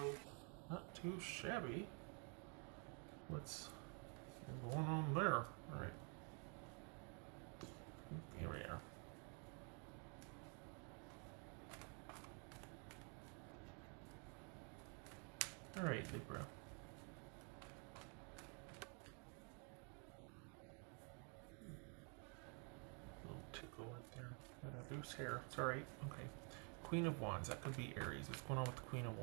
not too shabby. What's going on there? Alright. Here we are. Alright, Libra. Little tickle right there. Got a loose hair. It's alright. Okay. Queen of Wands. That could be Aries. What's going on with the Queen of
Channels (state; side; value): quieter; left; 37.7 dB